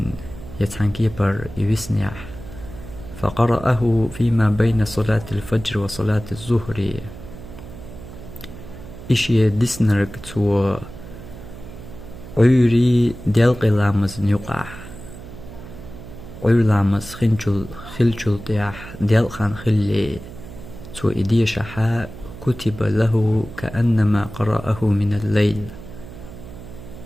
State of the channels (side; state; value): right; noise; hum, 14 dB below the sound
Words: يتحنكيبر يوسنيح فقرأه فيما بين صلاة الفجر وصلاة الظهر إشي ديسنرك تو عيري ديالق لامز نيقع عير لامز خلجل طياح ديالقان خلي تو إديشة كتب له كأنما قرأه من الليل